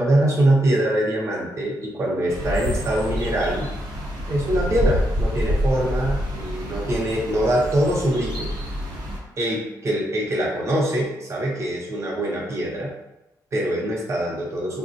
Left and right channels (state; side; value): normal; both; correlation 0.79